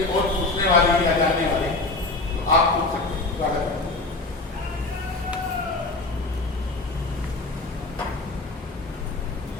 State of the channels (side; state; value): right; quieter; 3.2 dB